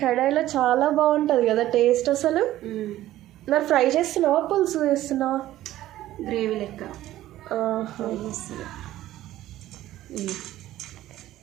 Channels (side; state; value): left; quieter; 14.4 dB